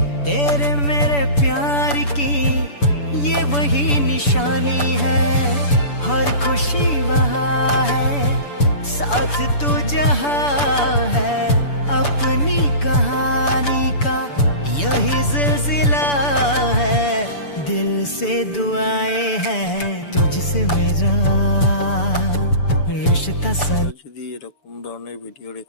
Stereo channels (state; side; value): late; right; 6.9 ms